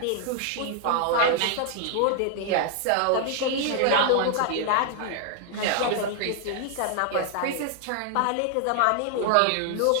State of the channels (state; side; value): different; both; correlation 0.00